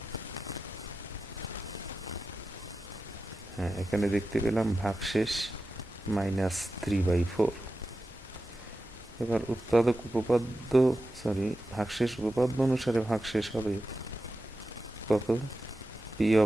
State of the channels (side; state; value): both; normal; correlation 0.92